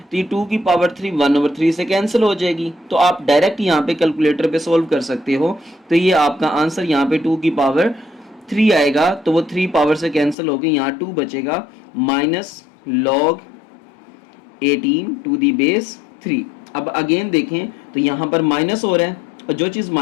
ये 2 की पावर 3 1/3 से कैंसिल हो जाएगी, तो आप डायरेक्ट यहाँ पे कैलकुलेटर पे सॉल्व कर सकते हो। तो ये आपका आंसर यहाँ पे 2 की पावर 3 आएगा, तो वो 3 पावर से कैंसिल हो गई, यहाँ 2 बचेगा, minus log 18 to the base 3। अब अगेन देखें तो यहाँ पर माइनस हो रहा है, और जो चीज़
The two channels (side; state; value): right; drops out; at 10.4 s